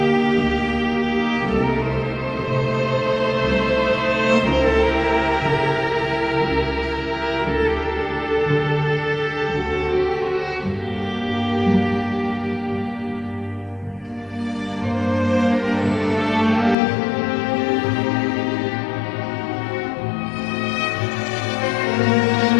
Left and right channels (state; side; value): drops out; right; at 16.8 s